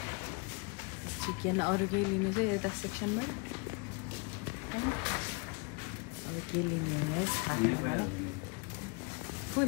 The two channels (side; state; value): right; quieter; 30.8 dB